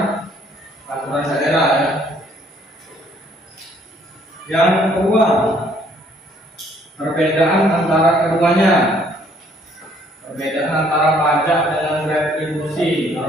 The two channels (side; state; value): both; normal; correlation 0.63